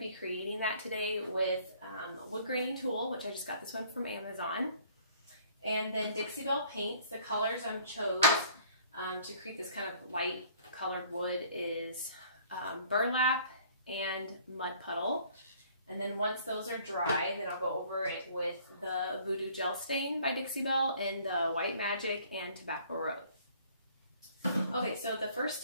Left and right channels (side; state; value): both; inverted; correlation -0.56